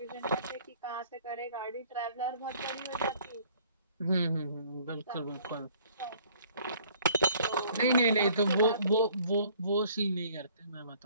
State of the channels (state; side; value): inverted; both; correlation -0.56